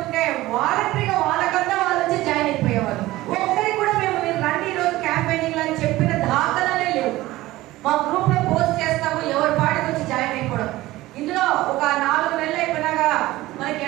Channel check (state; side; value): quieter; left; 17.5 dB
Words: వాలంటరీగా వాళ్ళకంతా వాళ్ళు వచ్చి జాయిన్ అయిపోయేవాళ్ళు. ఒక్కరికి కూడా మేము మీరు రండి ఈరోజు క్యాంపెయినింగ్ అని చెప్పిన దాఖలాలే లేవు. మా గ్రూప్ లో పోస్ట్ చేస్తాము, ఎవరి పాటికి వచ్చి జాయిన్ అయిపోవడం. ఇందులో ఒక 4 నెలలు అయిపోయినాక మనకి